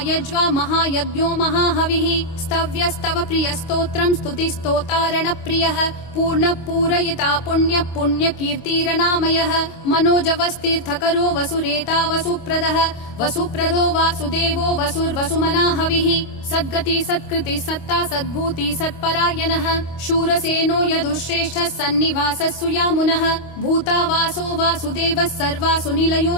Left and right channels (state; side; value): late; right; 25 ms